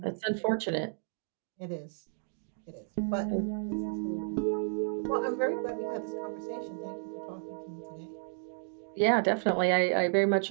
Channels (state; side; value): silent; left; digital silence